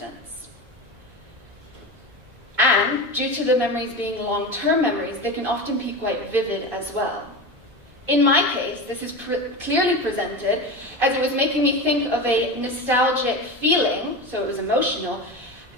And due to the memories being long-term memories, they can often be quite vivid as well. In my case, this is clearly presented as it was making me think of a nostalgic feeling, so it was emotional,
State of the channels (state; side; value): late; left; 1.7 ms